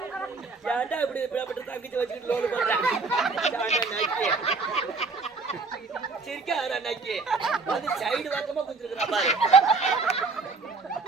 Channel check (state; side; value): quieter; left; 4.0 dB